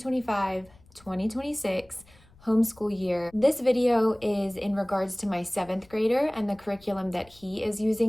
homeschool year. This video is in regards to my 7th grader and the curriculum that he is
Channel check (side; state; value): left; noise; rumble, 27 dB below the sound